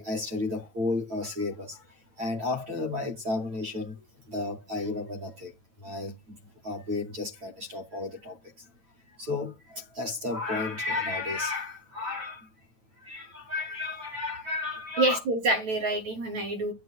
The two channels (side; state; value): left; late; 9.1 ms